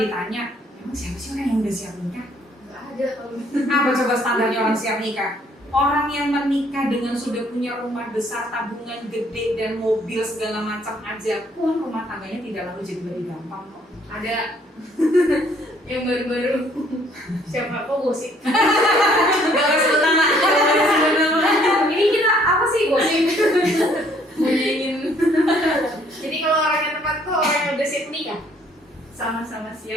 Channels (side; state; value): both; normal; correlation 0.63